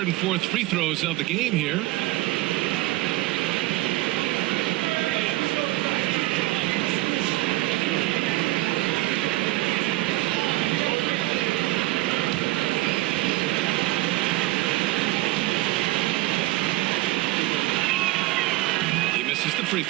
and 4th free throws of the game here. He misses the free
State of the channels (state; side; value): quieter; left; 18.4 dB